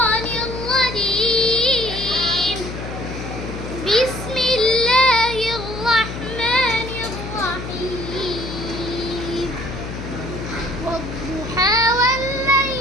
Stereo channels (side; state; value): left; noise; hum, 8 dB below the sound